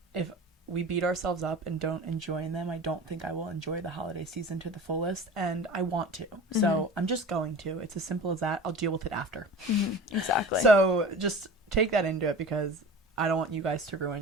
if we beat ourselves up and don't enjoy them, I don't think I will enjoy the holiday season to the fullest, and I want to. So I'm just going to. It's as simple as that. I'll deal with it after. Exactly. So just take that into it, because I don't want you guys to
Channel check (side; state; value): both; normal; correlation 0.37